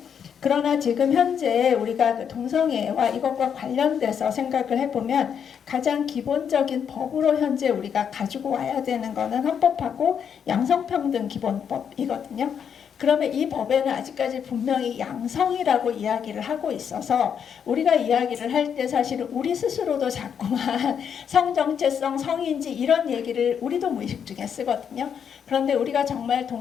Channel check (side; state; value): right; quieter; 7.7 dB